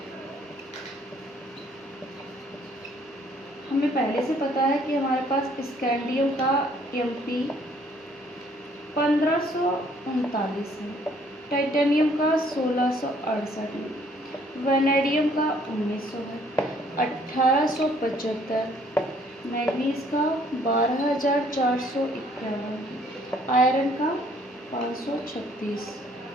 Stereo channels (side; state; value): both; normal; correlation 0.62